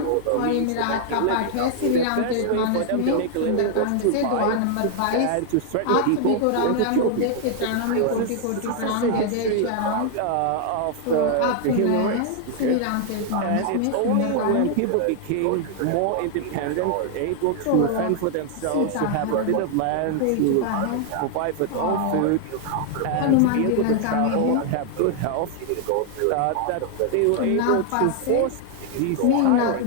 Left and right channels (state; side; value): different; both; correlation 0.00